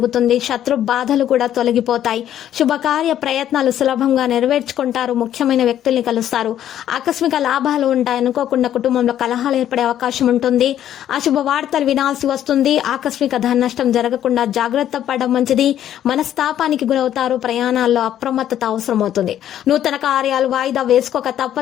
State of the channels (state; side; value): quieter; right; 11.1 dB